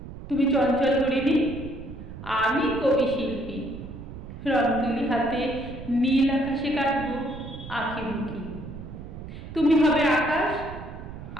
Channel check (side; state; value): right; noise; rumble, 12 dB below the sound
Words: তুমি চঞ্চল হরিণী, আমি কবি শিল্পী। রং তুলি হাতে নীল আকাশে কাটবো আঁকি বুকি। তুমি হবে আকাশ,